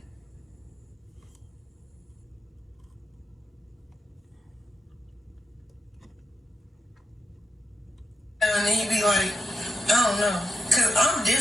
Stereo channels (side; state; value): both; normal; correlation 0.85